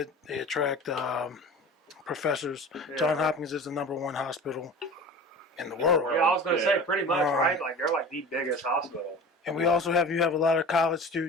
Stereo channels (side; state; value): both; normal; correlation 0.36